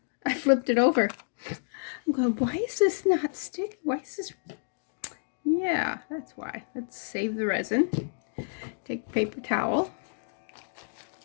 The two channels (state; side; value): silent; right; digital silence